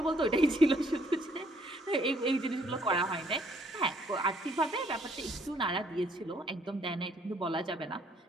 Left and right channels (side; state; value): both; normal; correlation 0.65